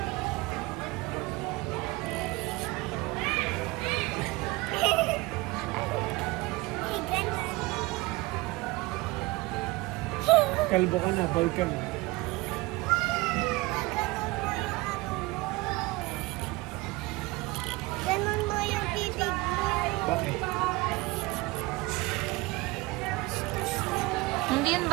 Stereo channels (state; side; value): quieter; left; 22.0 dB